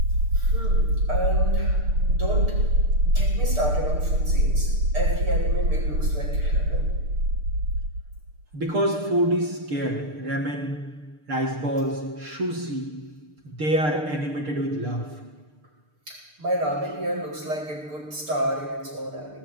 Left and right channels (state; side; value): late; left; 6.7 ms